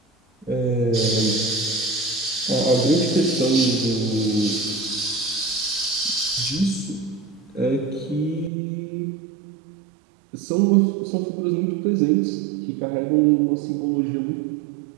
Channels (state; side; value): drops out; left; at 8.5 s